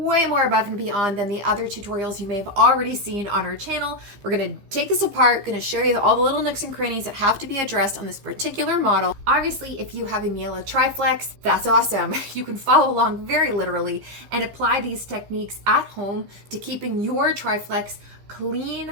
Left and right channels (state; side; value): late; left; 15 ms